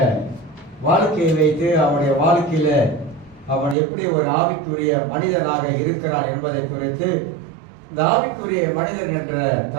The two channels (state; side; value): drops out; left; at 3.8 s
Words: வாழ்க்கையை வைத்து அவனுடைய வாழ்க்கையில அவன் எப்படி ஒரு ஆவிக்குரிய மனிதனாக இருக்கிறான் என்பதை குறித்து இந்த ஆவிக்குரிய மனிதன் என்ற